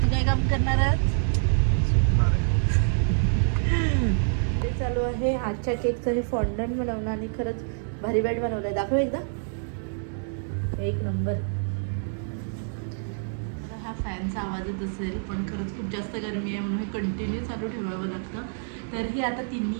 काय काम करणार आहात? ते चालू आहे आजच्या केकचं हे फॉन्डंट बनवणं. आणि खरंच भारी बॅट बनवलं आहे. दाखव एकदा, एक नंबर. हा फॅनचा आवाज येत असेल, पण खरंच खूप जास्त गरमी आहे म्हणून हे कंटिन्यू चालू ठेवावं लागतं. तर ही आता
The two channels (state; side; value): silent; left; digital silence